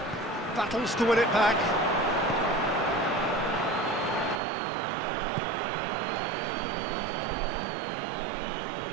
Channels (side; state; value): left; drops out; at 4.4 s